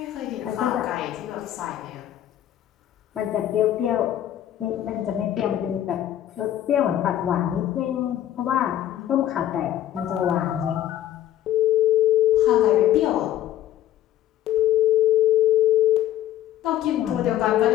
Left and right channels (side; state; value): right; quieter; 12.2 dB